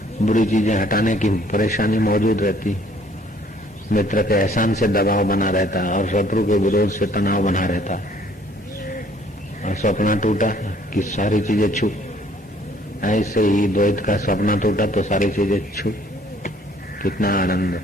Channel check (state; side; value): normal; both; correlation 0.59